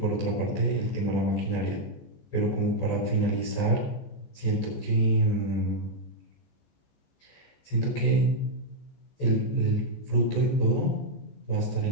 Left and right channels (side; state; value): right; late; 14 ms